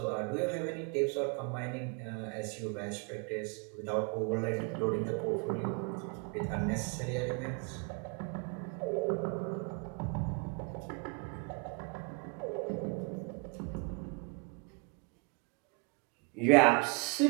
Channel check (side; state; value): left; quieter; 31.9 dB